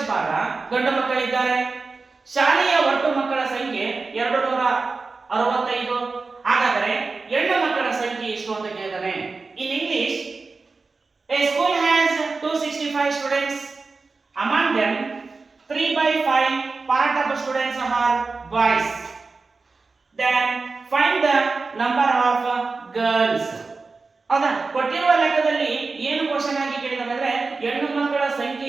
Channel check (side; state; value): left; quieter; 4.1 dB